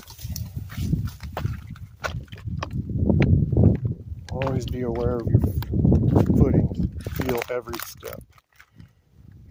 Always be aware of your footing. Feel every step.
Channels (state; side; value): identical; both; correlation 1.00